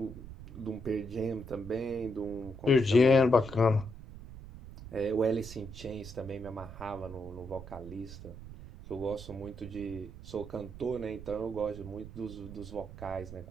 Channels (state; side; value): noise; right; rumble, 13 dB below the sound